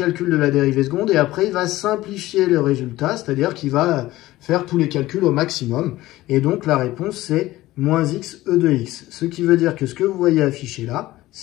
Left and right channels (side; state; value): right; quieter; 16.9 dB